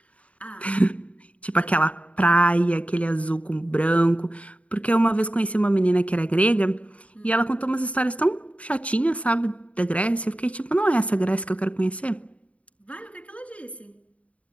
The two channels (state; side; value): late; right; 0.065 ms